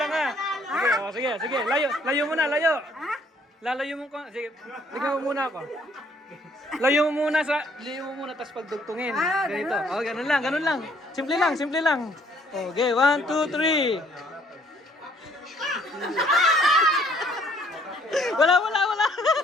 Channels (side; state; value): both; normal; correlation 0.63